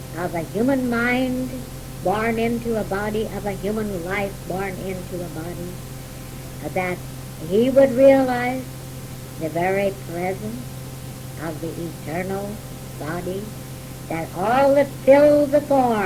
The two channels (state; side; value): identical; both; correlation 1.00